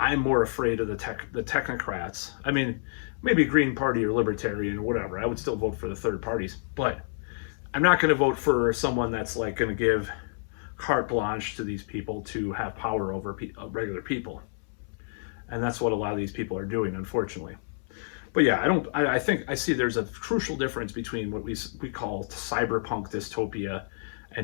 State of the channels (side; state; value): right; silent; 59 dB below the other